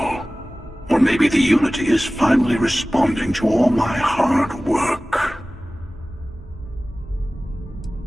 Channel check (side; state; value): both; normal; correlation 0.97